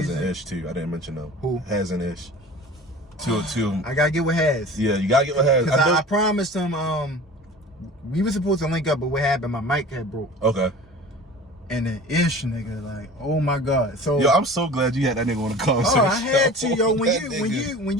and Ish too. I didn't mention them. Who? Haz and Ish. Two of them. I gotta get with Haz. Yeah, you gotta get with Haz. Cause I promised him. We were supposed to link up, but what happened? My mic had broke. Okay. And then Ish, nigga, like, oh my god. So yo, I'm so glad you had that nigga on the conversation. Oh, I had to, yo. When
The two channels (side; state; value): both; normal; correlation 0.40